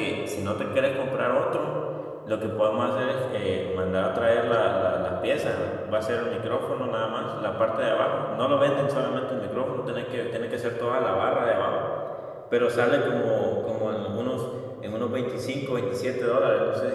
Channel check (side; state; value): both; identical; correlation 1.00